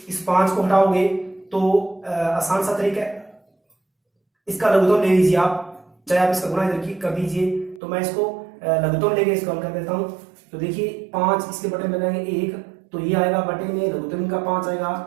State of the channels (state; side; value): drops out; left; at 7.8 s